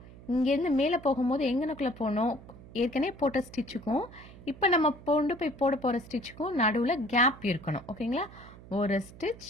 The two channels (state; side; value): noise; right; hum, 19 dB below the sound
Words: இங்கேருந்து மேலே போகும்போது எங்கனக்குள்ளே போகணும், ஏற்கனவே போட்ட ஸ்டிச்சுக்கும் இப்போ நம்ம கொண்டு போய் போட போகிற ஸ்டிச்சுக்கும் நடுவில் கேப் இருக்கணும். ஓகேங்களா? ஒரு